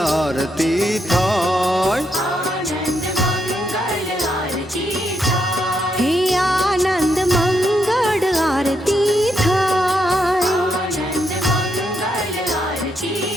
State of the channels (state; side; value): normal; both; correlation 0.79